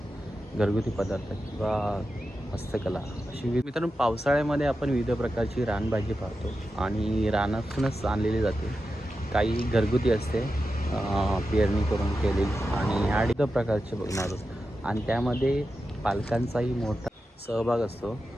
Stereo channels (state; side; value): normal; both; correlation 0.90